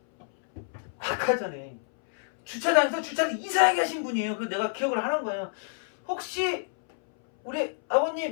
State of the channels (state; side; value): silent; right; 60 dB below the other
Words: 아까 전에 주차장에서 주차를 이상하게 하신 분이에요. 그래서 내가 기억을 하는 거예요. 혹시 우리